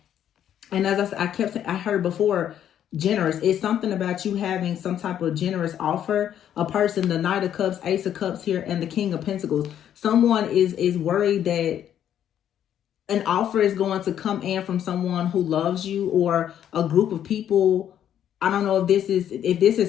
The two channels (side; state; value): right; quieter; 10.2 dB